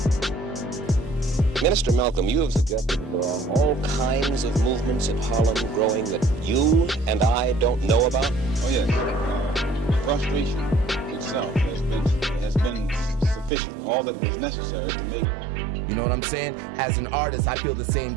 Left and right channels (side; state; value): left; drops out; at 13.5 s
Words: Minister Malcolm, you have suggested there are all kinds of movements in Harlem growing that you and I don't know about? Oh yes, frustration itself has been sufficient, all that was necessary to make. You know what I'm saying? As an artist, I feel the same